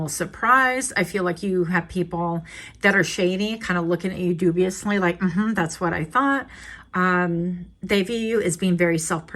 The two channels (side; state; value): both; identical; correlation 1.00